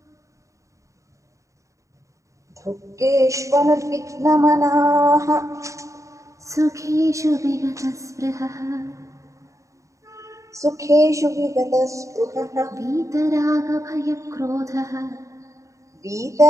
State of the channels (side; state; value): left; late; 0.15 ms